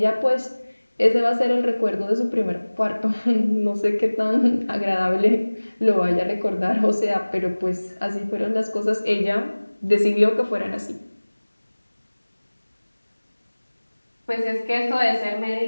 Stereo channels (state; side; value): inverted; both; correlation -1.00